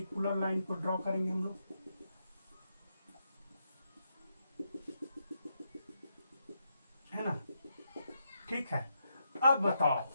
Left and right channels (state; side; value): inverted; both; correlation -0.82